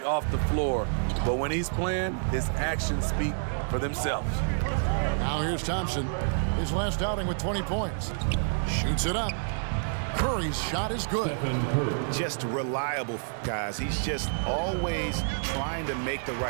off the floor, but when he's playing, his actions speak for themselves. Now here's Thompson. His last outing with 20 points. Shoots it up. Curry's shot is good. Just reliable, guys. He's just always trying to make the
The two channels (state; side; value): silent; left; digital silence